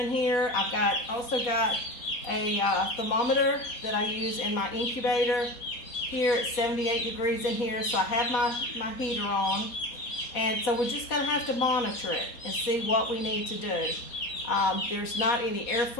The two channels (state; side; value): late; right; 4.1 ms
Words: here. I've also got a thermometer that I use in my incubator. Here it's 78 degrees in here, so I have my heater on. And so we're just going to have to monitor it and see what we need to do. There's not any